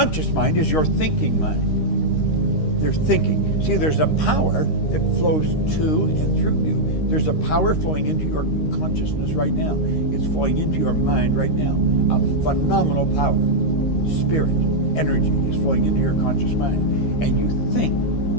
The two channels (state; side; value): late; right; 13 ms